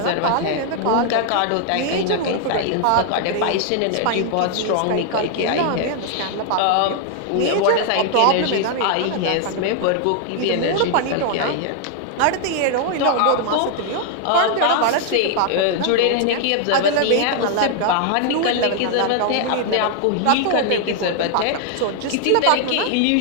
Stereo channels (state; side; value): different; both; correlation 0.00